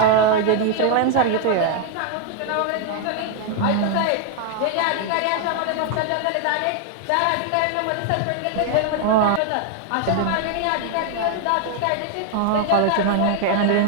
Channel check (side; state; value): both; different; correlation 0.00